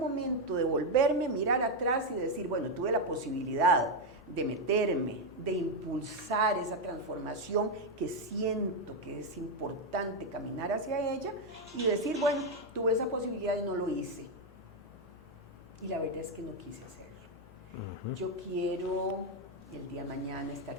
devolverme, mirar atrás y decir, bueno, tuve la posibilidad de meterme, de impulsar esa transformación que siento que es importante caminar hacia ella y decir, bueno, tuve esa posibilidad y no lo hice. Y la verdad es que no quise hacerlo. Yo quiero el día de mañana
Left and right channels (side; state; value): both; normal; correlation 0.04